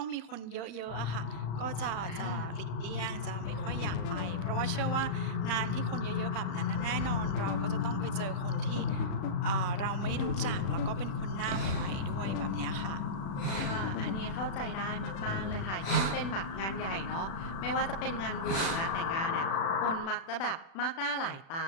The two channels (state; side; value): late; right; 35 ms